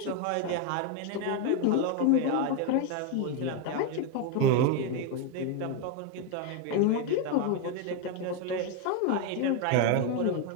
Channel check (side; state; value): both; different; correlation 0.01